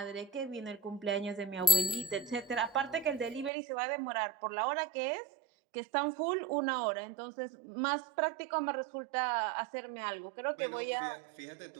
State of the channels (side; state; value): left; drops out; at 3.5 s